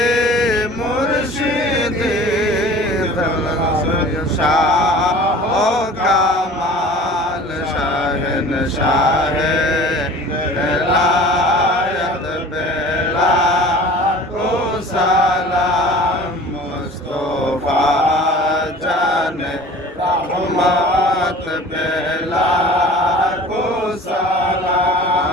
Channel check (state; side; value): normal; both; correlation 0.43